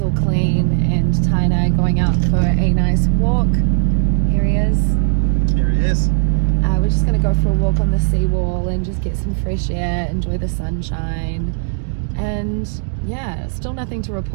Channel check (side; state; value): left; silent; digital silence